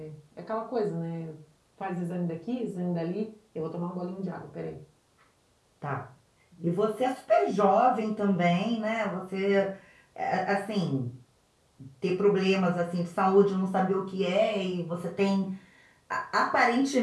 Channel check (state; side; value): identical; both; correlation 1.00